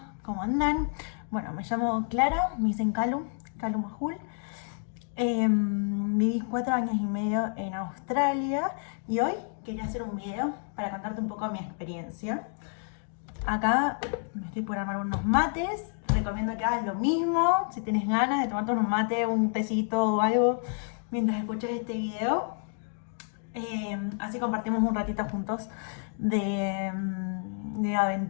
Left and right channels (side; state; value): right; silent; 58 dB below the other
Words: ¿cómo andan? Bueno, me llamo Clara, me dicen Calu Majul. Viví 4 años y medio en Australia y hoy quería hacer un video para contarte un poco mi experiencia. Acá me estoy por armar unos mates, recomiendo que hagas lo mismo si tienes ganas de tomarte unos mates, un tecito o algo mientras escuchas este video. Así compartimos un ratito juntos de